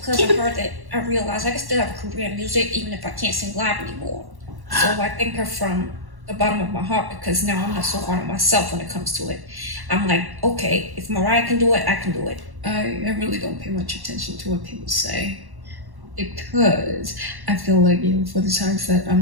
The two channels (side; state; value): left; late; 1.1 ms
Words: of her that I realized I can still have a career in music even if I can't sing live anymore. So I thank her from the bottom of my heart because now I'm not so hard on myself when it comes to it. I'm like, okay, if Mariah can do it, I can do it. I really don't pay much attention to what people say because I feel like even for the times that